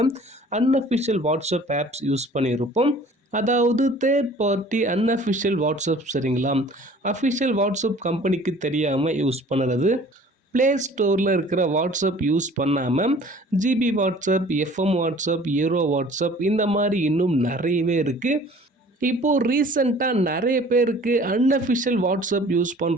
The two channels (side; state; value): both; normal; correlation 0.49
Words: அன்அஃபிஷியல் வாட்ஸ்அப் ஆப்ஸ் யூஸ் பண்ணியிருப்போம். அதாவது தேர்ட் பார்ட்டி அன்அஃபிஷியல் வாட்ஸ்அப், சரிங்களா? அஃபிஷியல் வாட்ஸ்அப் கம்பெனிக்கு தெரியாமல் யூஸ் பண்ணுறது. ப்ளே ஸ்டோரில் இருக்கிற வாட்ஸ்அப் யூஸ் பண்ணாமல் GB WhatsApp, FM WhatsApp, aero WhatsApp இந்த மாதிரி இன்னும் நிறையவே இருக்குது. இப்போது ரீசெண்டாக நிறைய பேருக்கு அன்அஃபிஷியல் வாட்ஸ்அப் யூஸ்